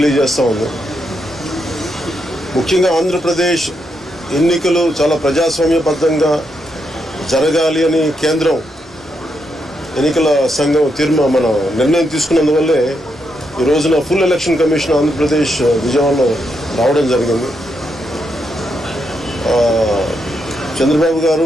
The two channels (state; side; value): normal; both; correlation 0.81